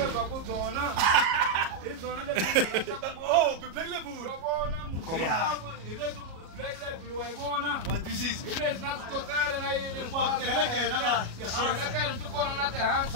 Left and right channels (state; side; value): late; left; 37 ms